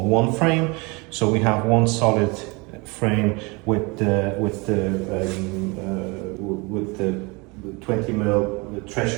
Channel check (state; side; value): quieter; left; 27.4 dB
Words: one frame, so we have one solid frame with the 20 mil